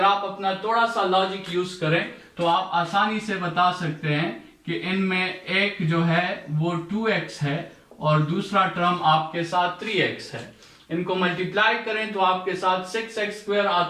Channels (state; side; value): identical; both; correlation 1.00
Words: आप अपना थोड़ा सा लॉजिक यूज करें तो आप आसानी से बता सकते हैं कि इनमें एक जो है वो 2x है और दूसरा टर्म आपके साथ 3x है। इनको मल्टीप्लाई करें तो आपके साथ 6x²